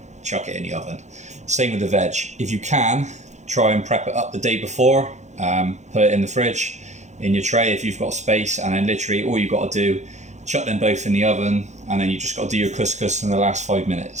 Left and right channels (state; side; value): late; left; 0.34 ms